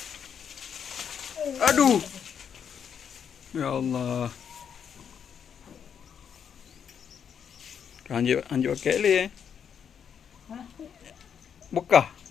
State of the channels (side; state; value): right; quieter; 7.7 dB